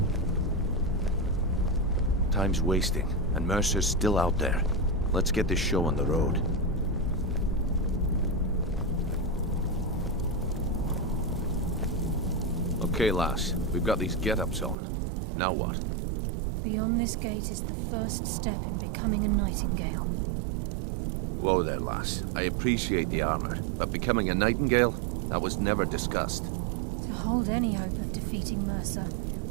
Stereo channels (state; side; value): drops out; left; at 14.8 s